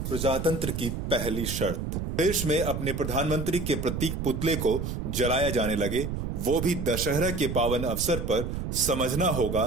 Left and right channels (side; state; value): right; noise; rumble, 4 dB below the sound